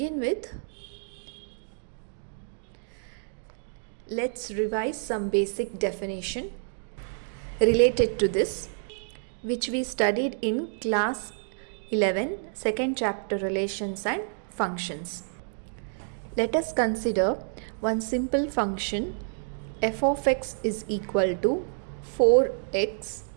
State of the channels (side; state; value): left; silent; digital silence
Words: with, let's revise some basic definition related to this, which we studied in class 11, second chapter, relations and functions. Let us consider one simple function. F of x is equal to 4x.